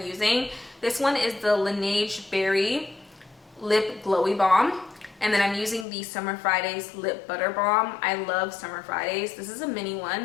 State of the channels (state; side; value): drops out; right; at 5.9 s